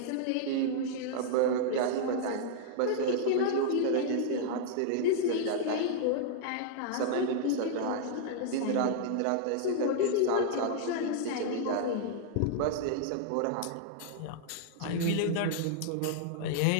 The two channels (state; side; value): different; both; correlation -0.01